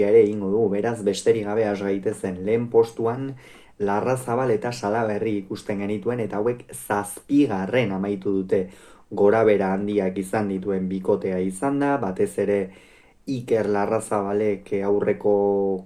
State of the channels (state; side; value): identical; both; correlation 1.00